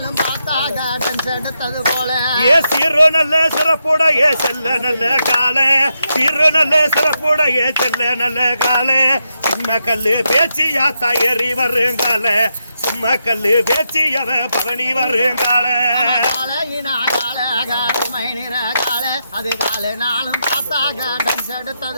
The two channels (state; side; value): inverted; both; correlation -0.84